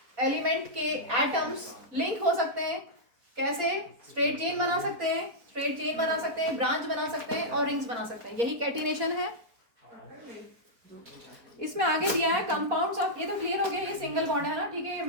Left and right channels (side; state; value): left; late; 4.4 ms